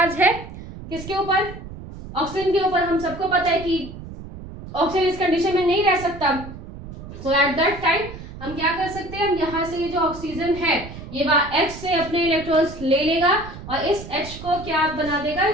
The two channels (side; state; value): right; noise; rumble, 13 dB below the sound